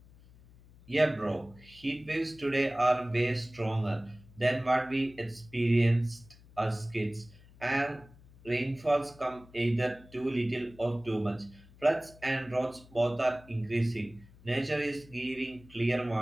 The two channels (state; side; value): noise; left; hum, 24 dB below the sound